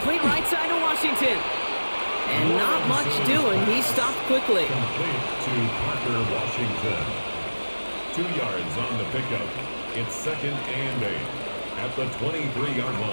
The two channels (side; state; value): both; inverted; correlation -1.00